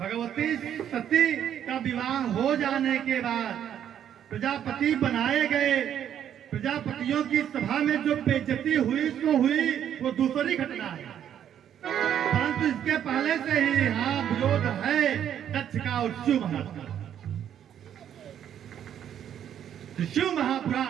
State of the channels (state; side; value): quieter; left; 9.8 dB